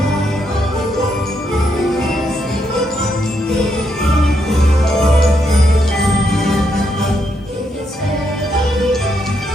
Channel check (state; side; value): normal; both; correlation 0.78